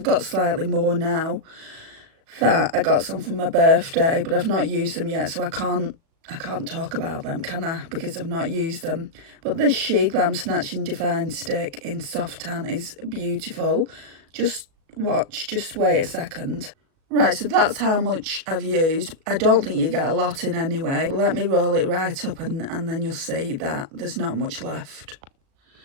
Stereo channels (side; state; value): left; late; 36 ms